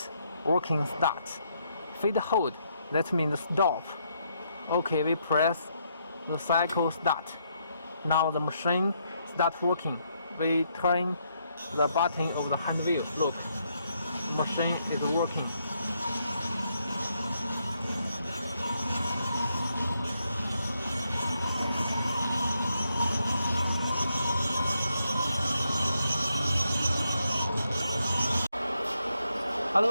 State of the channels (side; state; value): both; inverted; correlation -0.77